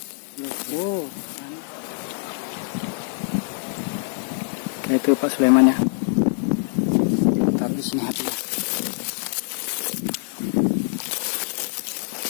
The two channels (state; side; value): silent; right; digital silence